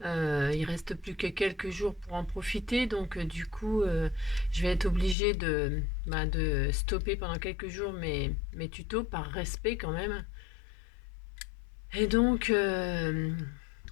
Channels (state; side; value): drops out; right; at 5.2 s